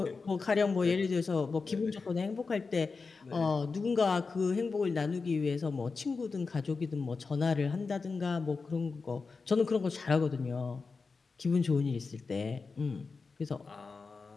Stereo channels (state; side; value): quieter; right; 4.5 dB